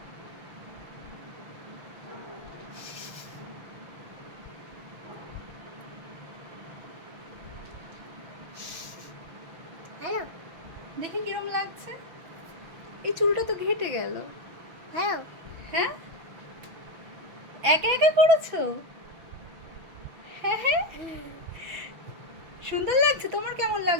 হ্যালো, দেখি কিরম লাগছে। এই চুলটা তো ঘেটে গেল। হ্যালো। হ্যাঁ, একা একা করেছো? হ্যাঁ হ্যাঁ, সুন্দর লাগছে। তোমার কেমন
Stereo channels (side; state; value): left; late; 6.3 ms